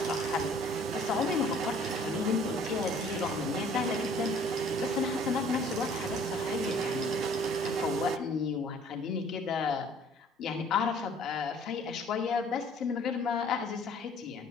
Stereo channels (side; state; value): both; normal; correlation 0.54